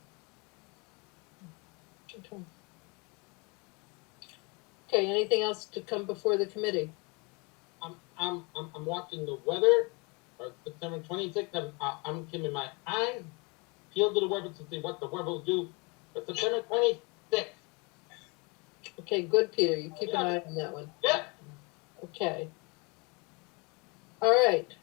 Okay, anything else to come before the committee? I'm watching the weather, or September 26th, I'm keeping my eyes peeled to the weather to see what the weather will do, but September 26th. Okay, good, Peter, you keep an eye on that one. Yeah. Okay. All right,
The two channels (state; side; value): quieter; right; 29.7 dB